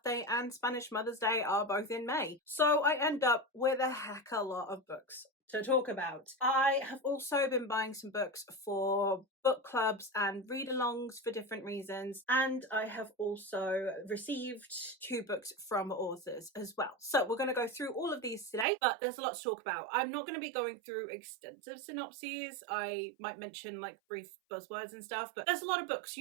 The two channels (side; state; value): left; drops out; at 18.7 s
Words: and Spanish Mother's Day are both in May. So I end up with a heck of a lot of books to talk about. I have also been buying some books for book clubs and read-alongs for different reasons, and I have also received 2 books from authors as well. So we're going to go through all of these today, but there's a lot to talk about. I'm not going to be going through extensive synopses. I might mention like brief buzzwords and stuff, but there's a lot of books.